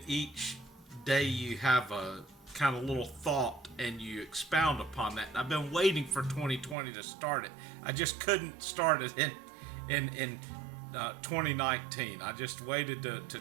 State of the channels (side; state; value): left; drops out; at 6.8 s